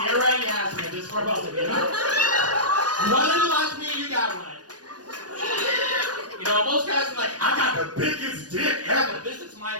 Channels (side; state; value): left; late; 0.69 ms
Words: and Yasmin, this is for both of you. You wanted to watch me, you got one. You know, most guys are like, I got the biggest dick ever. This is my